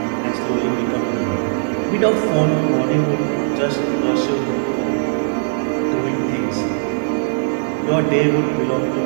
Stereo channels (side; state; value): left; silent; digital silence